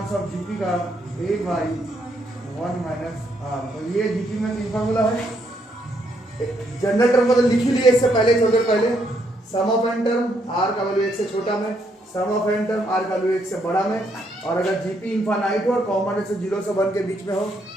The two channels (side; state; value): both; normal; correlation 0.74